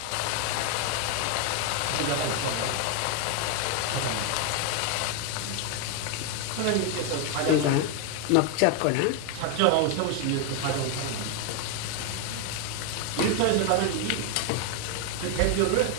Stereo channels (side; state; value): both; different; correlation 0.01